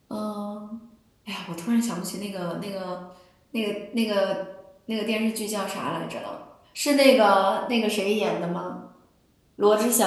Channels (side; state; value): both; identical; correlation 1.00